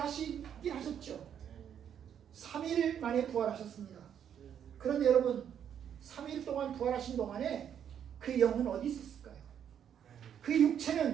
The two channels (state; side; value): quieter; left; 8.9 dB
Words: 하셨죠. 3일 만에 부활하셨습니다. 그런데 여러분, 3일 동안 부활하신 동안에 그 영은 어디 있었을까요? 그